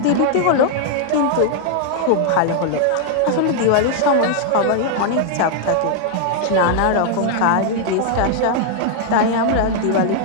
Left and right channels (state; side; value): different; both; correlation 0.00